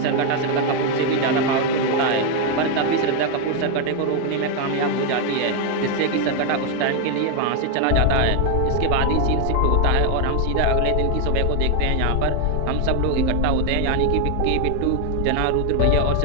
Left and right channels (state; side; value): different; both; correlation 0.01